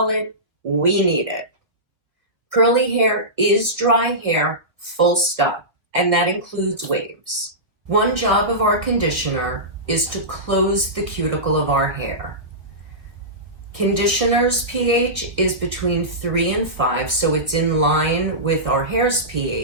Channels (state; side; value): late; left; 1.8 ms